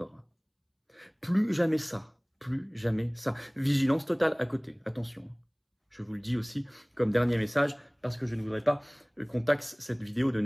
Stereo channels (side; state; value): both; identical; correlation 1.00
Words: Plus jamais ça. Plus jamais ça. Vigilance totale à côté. Attention. Je vous le dis aussi comme dernier message parce que je ne voudrais pas qu'on taxe cette vidéo de